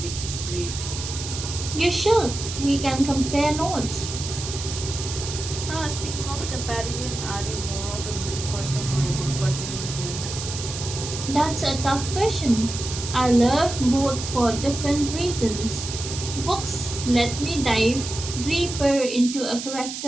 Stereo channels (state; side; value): noise; right; hiss, 7 dB below the sound